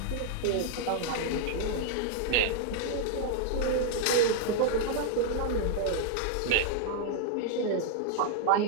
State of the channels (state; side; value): different; both; correlation 0.00